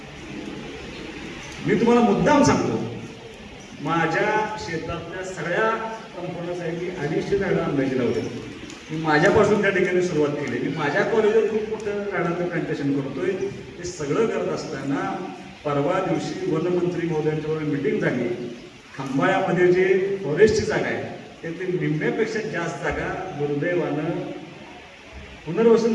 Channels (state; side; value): identical; both; correlation 1.00